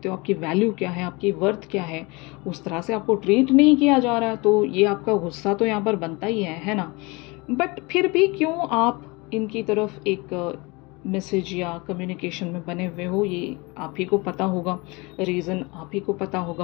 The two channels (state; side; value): quieter; right; 26.0 dB